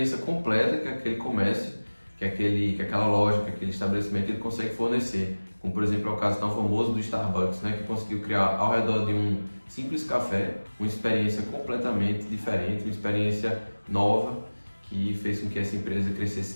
completa que aquele comércio, que aquela loja, que aquele estabelecimento ele consegue fornecer. Como, por exemplo, é o caso tão famoso do Starbucks, que conseguiu criar ao redor de um simples café uma experiência completamente diferente, uma experiência nova que fez com que essa empresa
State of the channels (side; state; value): both; inverted; correlation -1.00